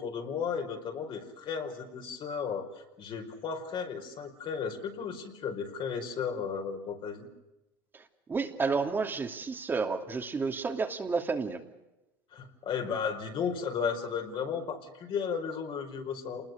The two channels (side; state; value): both; normal; correlation 0.51